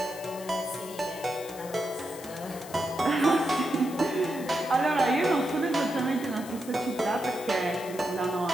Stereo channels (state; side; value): noise; left; hiss, 16 dB below the sound